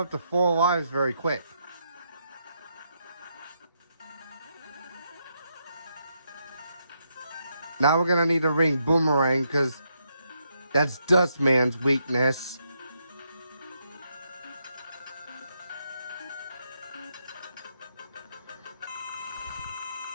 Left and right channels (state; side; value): inverted; both; correlation -0.79